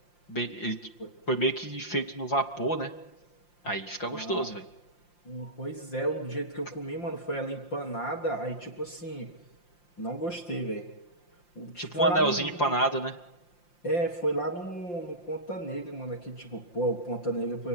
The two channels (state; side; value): late; right; 5.7 ms